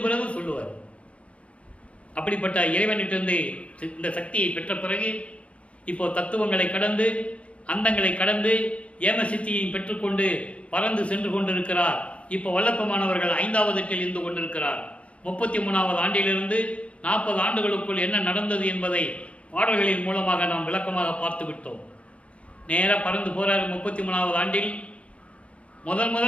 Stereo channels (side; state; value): right; late; 0.062 ms